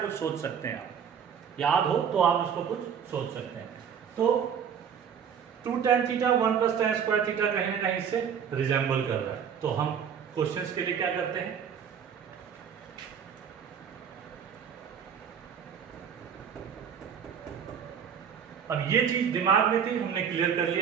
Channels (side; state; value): left; quieter; 7.6 dB